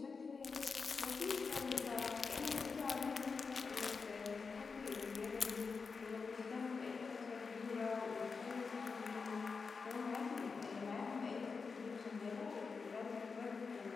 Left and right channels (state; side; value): quieter; right; 4.9 dB